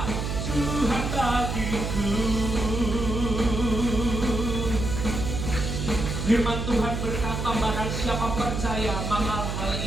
Tuhan bagiku. Firman Tuhan berkata, barang siapa percaya maka hal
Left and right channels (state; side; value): noise; right; hum, 3 dB below the sound